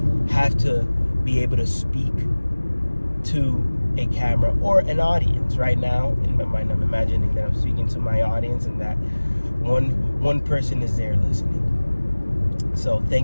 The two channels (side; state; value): both; inverted; correlation -1.00